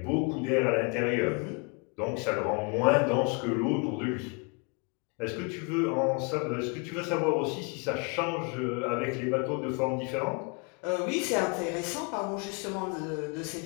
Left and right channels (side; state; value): right; quieter; 34.0 dB